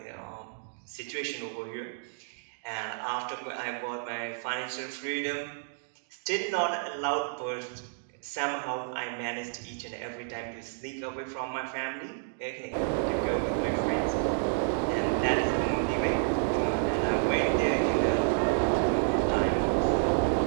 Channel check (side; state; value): left; silent; digital silence